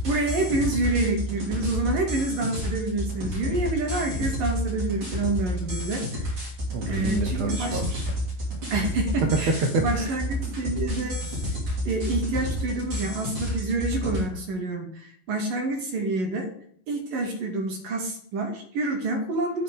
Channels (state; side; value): late; left; 11 ms